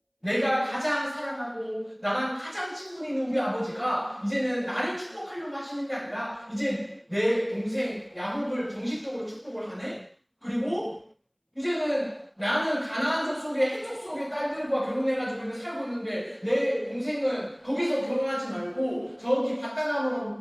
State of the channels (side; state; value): both; identical; correlation 1.00